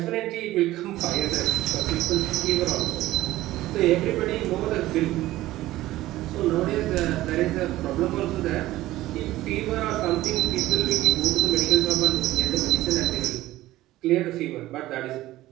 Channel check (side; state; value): left; quieter; 16.2 dB